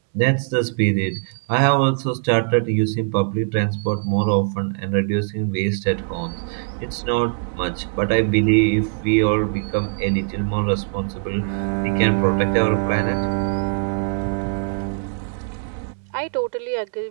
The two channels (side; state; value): left; silent; 63 dB below the other